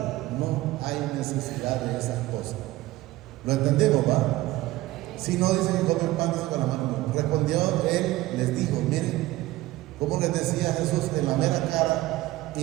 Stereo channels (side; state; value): left; quieter; 17.5 dB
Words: no hay necesidad de esas cosas. ¿Lo entendemos, va? Si no, dicen que comen pan con la mano. Respondió él, les dijo, miren, como les decía Jesús en la mera cara, y